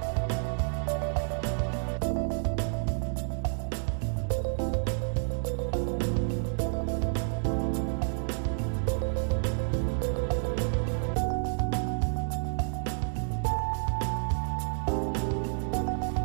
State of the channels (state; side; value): silent; left; digital silence